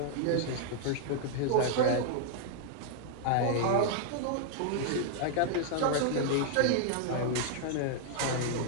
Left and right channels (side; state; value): both; different; correlation 0.00